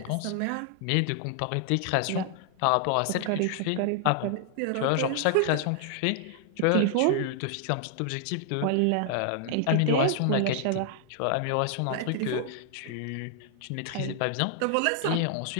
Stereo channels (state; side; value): different; both; correlation 0.00